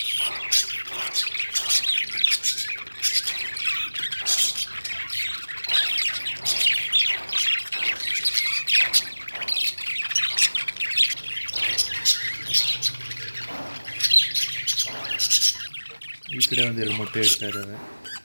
ಈ ಕಡೆ ಒಂದೆರಡು ಮೊಟ್ಟೆ ಇಡ್ತಾ ಇದ್ದಾವೆ.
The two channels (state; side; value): inverted; both; correlation -1.00